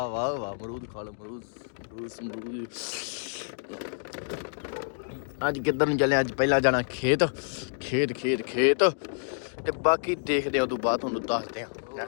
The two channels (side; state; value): right; silent; digital silence